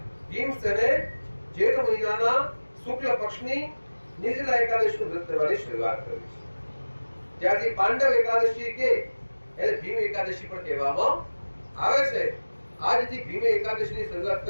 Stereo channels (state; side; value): inverted; both; correlation -1.00